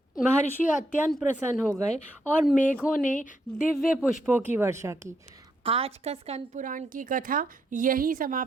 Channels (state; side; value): normal; both; correlation 0.77